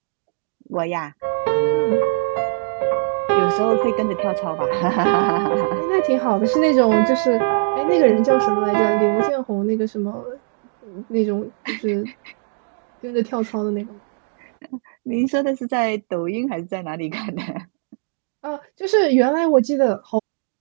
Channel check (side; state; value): left; silent; digital silence